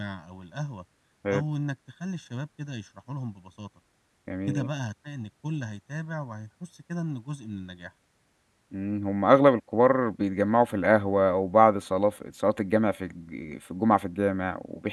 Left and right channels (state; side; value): identical; both; correlation 1.00